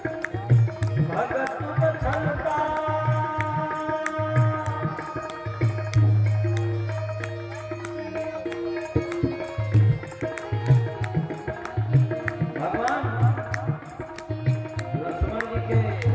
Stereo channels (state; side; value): identical; both; correlation 1.00